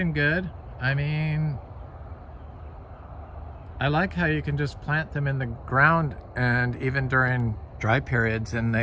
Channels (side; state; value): both; identical; correlation 1.00